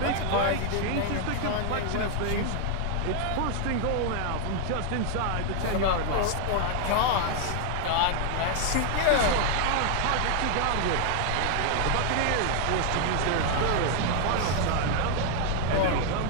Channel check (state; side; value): different; both; correlation 0.00